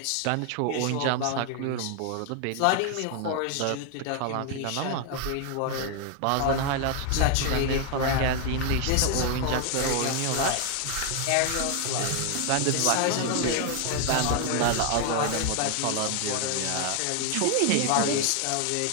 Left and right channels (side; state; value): both; different; correlation 0.00